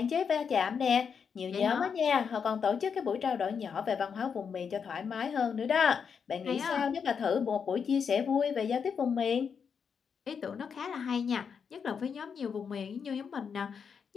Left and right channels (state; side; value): quieter; right; 6.5 dB